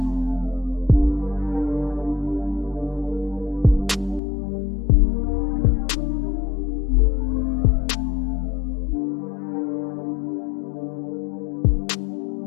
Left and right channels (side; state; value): right; drops out; at 4.2 s